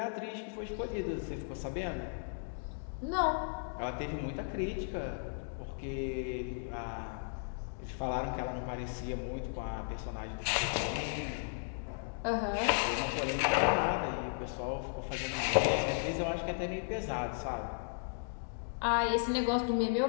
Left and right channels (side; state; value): right; silent; digital silence